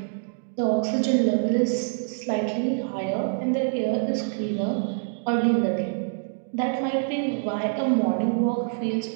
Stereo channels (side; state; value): left; silent; digital silence